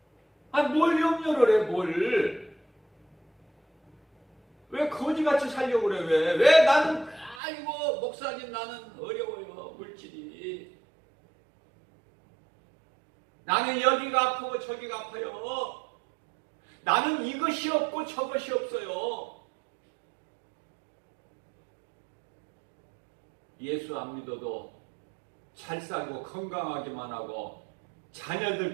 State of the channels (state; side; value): drops out; left; at 7.4 s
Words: 뭘 염려를 해, 뭘. 왜 거지같이 살려고 그래, 왜 나는, 목사님 나는 어려워요, 물질이. 나는 여기가 아프고 저기가 아파요. 나는 이것이 없고 저것이 없어요. 예수 안 믿어도 잘 살고 건강하기만 하고